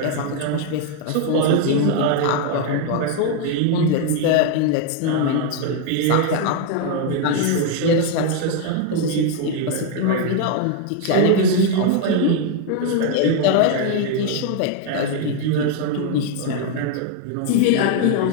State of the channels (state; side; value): different; both; correlation 0.01